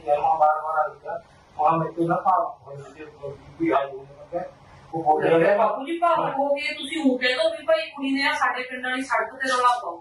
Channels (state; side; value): identical; both; correlation 1.00